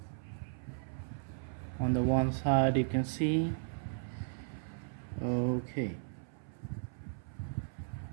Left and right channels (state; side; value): silent; left; 54 dB below the other